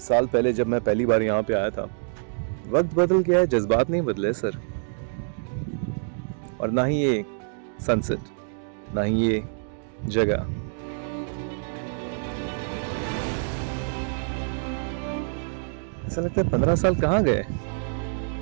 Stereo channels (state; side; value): silent; left; digital silence